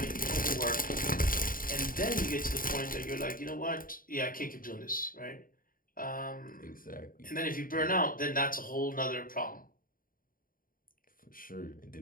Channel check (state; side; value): late; right; 0.41 ms